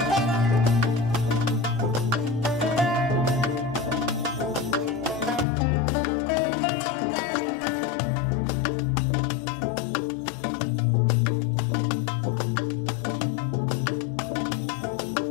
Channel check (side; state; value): right; drops out; at 5.5 s